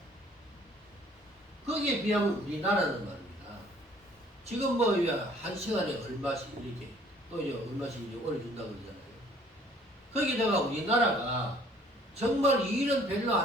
거기에 비하면 우리나라는 말입니다. 지금 뭐 한 시간에 얼마씩 이렇게 또 이제 얼마씩 이제 올려준다고 그러잖아요. 거기다가 우리나라가 정말 일은 별로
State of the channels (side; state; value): both; normal; correlation 0.57